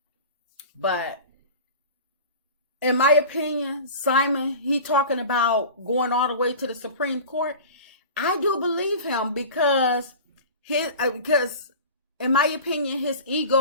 But in my opinion, Simon, he talking about going all the way to the Supreme Court. I do believe him because in my opinion, his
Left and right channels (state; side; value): inverted; both; correlation -0.36